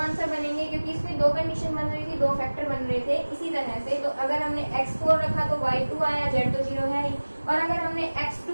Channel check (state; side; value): inverted; both; correlation -1.00